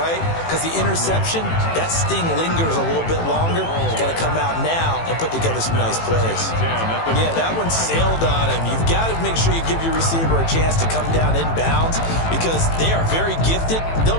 Because the interception, that sting lingers a little bit longer. Got to come out now and put together some nice plays. Yeah, that one sailed on him. You've got to make sure you give your receiver a chance to come down inbounds because they are very gifted. They'll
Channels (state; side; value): late; right; 18 ms